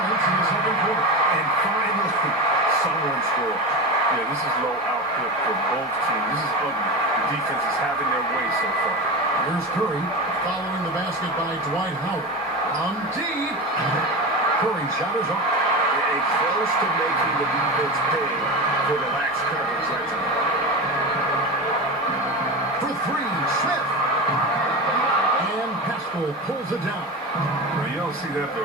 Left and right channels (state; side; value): normal; both; correlation 0.23